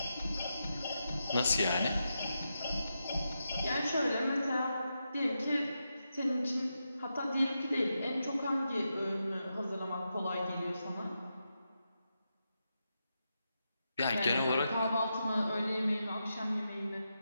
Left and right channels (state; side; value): inverted; both; correlation -0.87